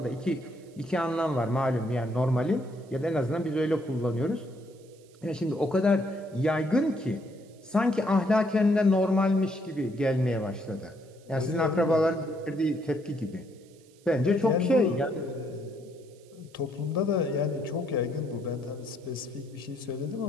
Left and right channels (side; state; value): right; noise; hiss, 29 dB below the sound